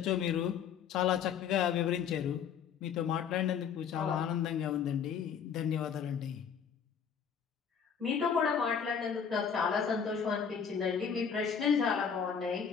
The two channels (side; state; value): right; quieter; 7.2 dB